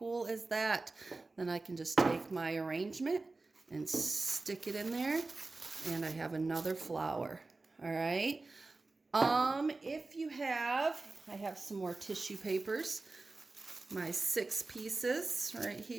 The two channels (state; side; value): quieter; left; 3.5 dB